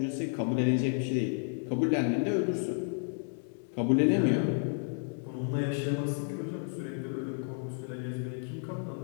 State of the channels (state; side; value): silent; right; 57 dB below the other